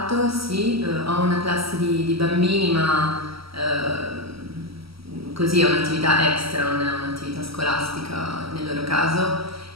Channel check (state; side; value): late; left; 0.75 ms